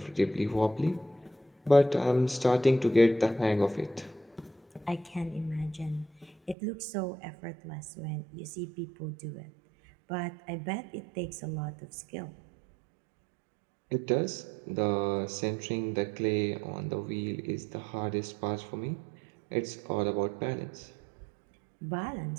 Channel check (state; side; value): drops out; left; at 6.6 s